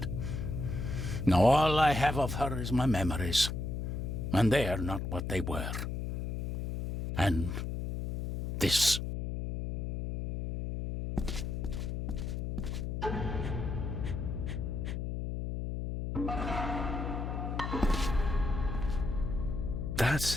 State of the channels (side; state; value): left; noise; hum, 3 dB below the sound